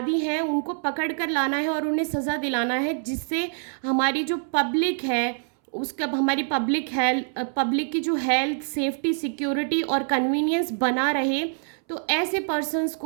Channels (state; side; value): silent; left; 62 dB below the other